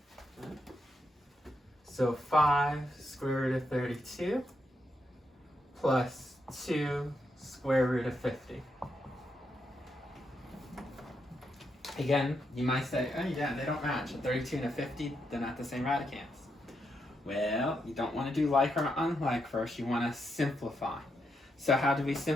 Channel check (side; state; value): both; normal; correlation 0.81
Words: So 5 square root of 32 plus 2 square root of 50. Again, you might say, oh yeah, they don't match. A 32 and a 50, they're not the same radicands. Well, you don't want to do like or unlike first. You want to simplify. So how do we